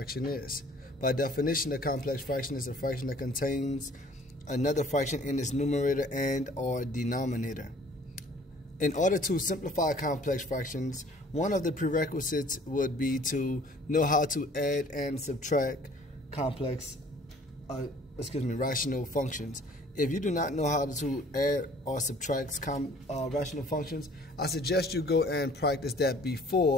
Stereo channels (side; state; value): both; normal; correlation 0.54